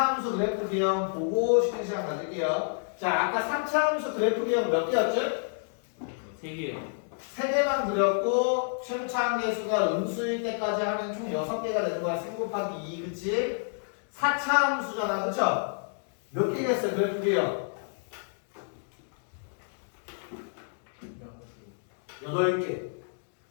그래프 기형 보고 쉬는 시간 가질게요. 자, 아까 3차 함수 그래프 기형 몇 개였죠? 3개요. 3개만 그렸고 최고차 함수가 음수일 때까지 하면 총 6개가 되는 거야. 3 곱하기 2, 그치? 4차 함수잖아, 그쵸? 몇 개겠어요, 그래프 기형? 8개.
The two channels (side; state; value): right; silent; digital silence